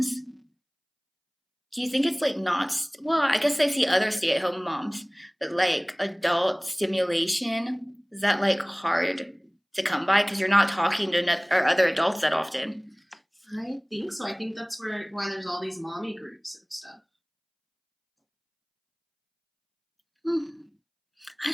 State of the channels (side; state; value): both; identical; correlation 1.00